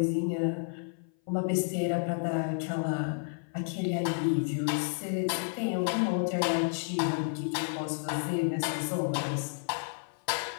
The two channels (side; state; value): right; silent; 55 dB below the other